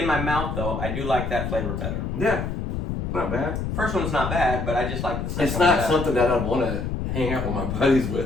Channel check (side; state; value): left; noise; rumble, 3 dB below the sound